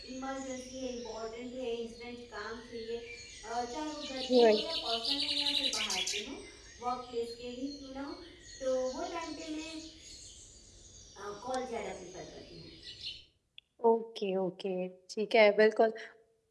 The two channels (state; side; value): identical; both; correlation 1.00